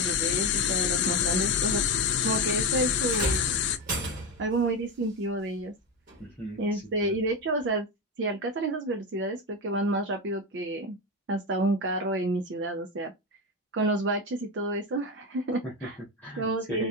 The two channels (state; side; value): normal; both; correlation 0.15